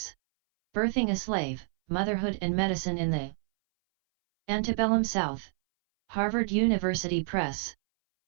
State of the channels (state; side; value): silent; left; 59 dB below the other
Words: Birthing a Slave, Motherhood and Medicine in the Antebellum South. Harvard University Press.